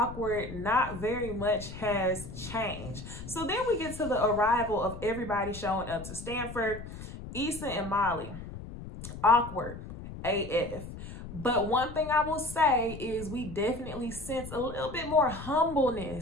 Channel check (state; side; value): noise; left; rumble, 11 dB below the sound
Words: Not very much has changed. So then we get to the arrival of everybody showing up to Stanford. Issa and Molly, awkward AF. But one thing I will say is we definitely sense a little bit more